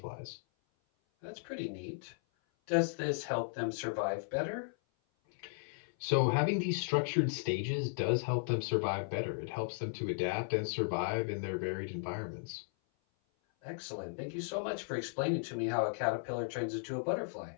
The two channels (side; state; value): right; silent; 54 dB below the other